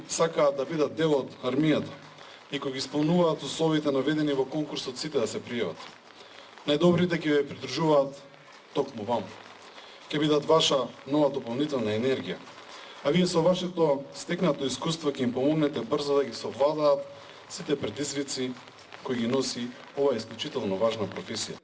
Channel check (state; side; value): identical; both; correlation 1.00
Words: сакаат да бидат дел од армијата и кои ги исполнуваат условите наведени во конкурсот, сите да се пријават. Најдобрите ќе ве придружуваат токму вам. Ќе бидат ваша нова дополнителна енергија. А вие со вашето стекнато искуство ќе им помогнете брзо да ги совладаат сите предизвици кои ги носи оваа исклучително важна професија.